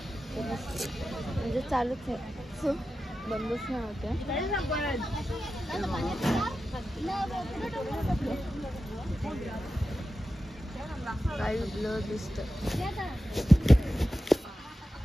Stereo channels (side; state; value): both; normal; correlation 0.92